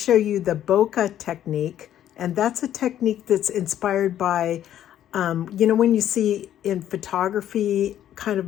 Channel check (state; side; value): quieter; right; 11.2 dB